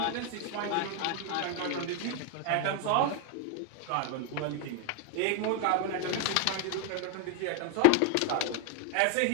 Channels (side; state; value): both; different; correlation 0.00